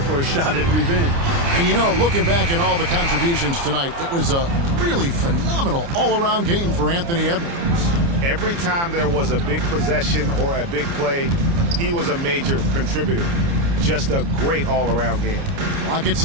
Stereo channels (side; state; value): left; late; 29 ms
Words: a shot at revenge. And you know, looking back at all the contributions tonight, it was a really phenomenal all-around game for Anthony Edwards. Every time there was a big possession or a big play, he was a major contributor. Just a great all-around game. Clock at